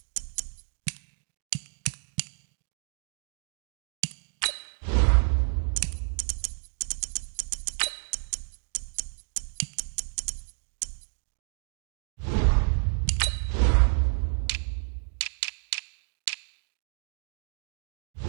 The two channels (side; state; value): left; silent; 58 dB below the other